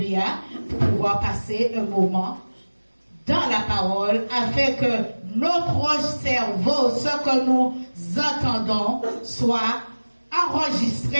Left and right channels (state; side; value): inverted; both; correlation -1.00